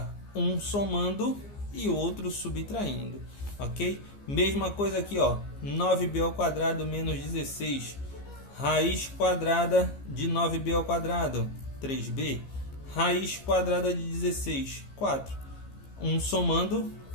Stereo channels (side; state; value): right; late; 15 ms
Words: um somando e outro subtraindo, ok? Mesma coisa aqui, ó, 9b ao quadrado menos 16, raiz quadrada de 9b ao quadrado, 3b, raiz quadrada de 16, 4, um somando,